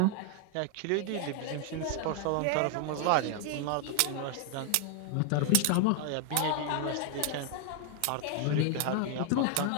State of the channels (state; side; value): different; both; correlation 0.00